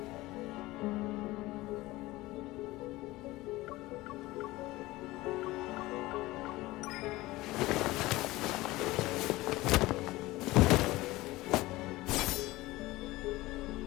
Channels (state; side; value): quieter; right; 19.1 dB